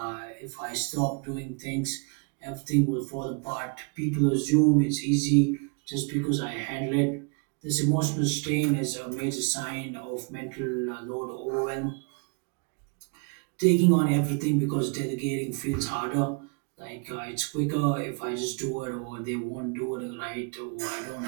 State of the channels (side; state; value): left; quieter; 35.9 dB